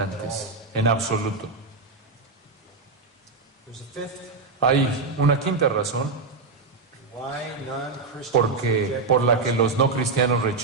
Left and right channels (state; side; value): quieter; left; 4.1 dB